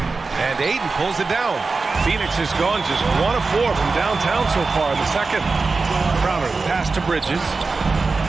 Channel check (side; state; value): left; quieter; 4.1 dB